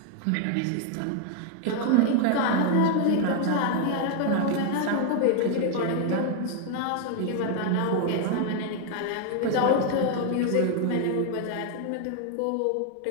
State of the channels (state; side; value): different; both; correlation 0.00